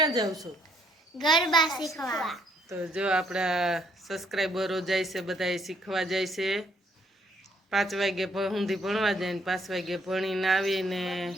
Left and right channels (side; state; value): both; normal; correlation 0.68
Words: जाव छो? गरबा शीखवा। तो जो आपड़ा सब्सक्राइबरो जाय छे बधाय शीखवा जाय छे। 5 वागे सुधी भणवा जाय ने 5 वागे भणीने आवीने